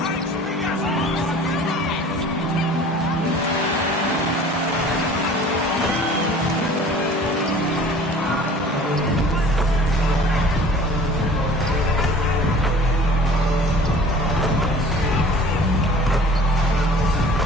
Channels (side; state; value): both; normal; correlation 0.47